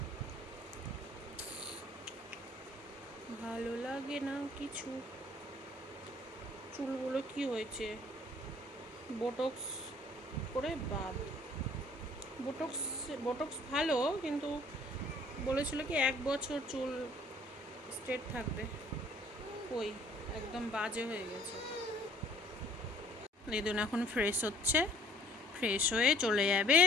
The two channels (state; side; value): normal; both; correlation 0.57